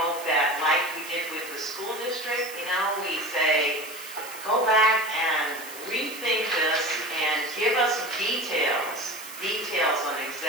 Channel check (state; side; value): noise; right; hiss, 13 dB below the sound